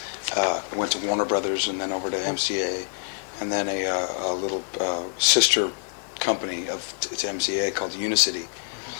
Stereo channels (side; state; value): right; silent; digital silence